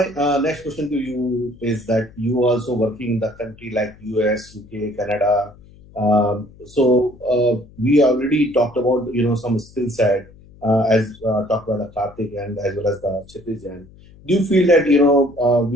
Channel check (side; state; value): left; noise; hum, 24 dB below the sound